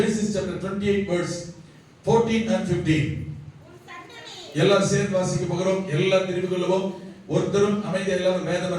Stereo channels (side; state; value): both; identical; correlation 1.00